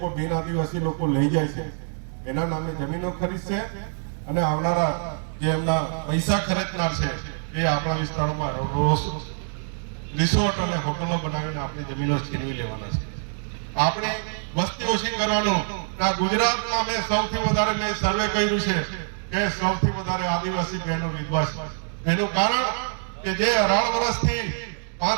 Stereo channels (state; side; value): silent; left; digital silence